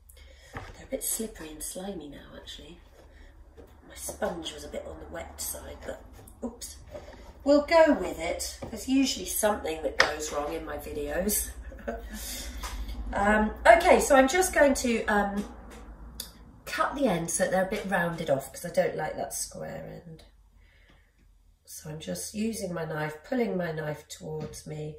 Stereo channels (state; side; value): identical; both; correlation 1.00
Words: They're a bit slippery and slimy now, actually. My sponge was a bit on the wet side, but oops. We'll go with it. There's usually something that goes wrong in my videos. Okay, so I'm just going to cut the ends so they're a bit rounded off, because I don't like that square end. So I'm just using my knife, pulling my knife towards me.